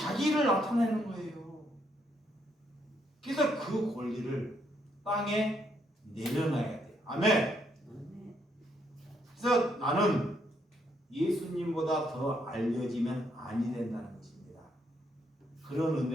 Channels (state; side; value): normal; both; correlation 0.74